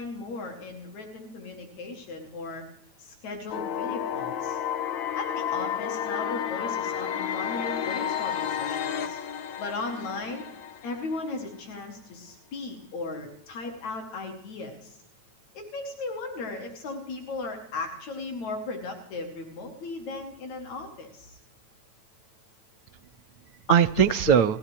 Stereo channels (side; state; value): right; late; 9.1 ms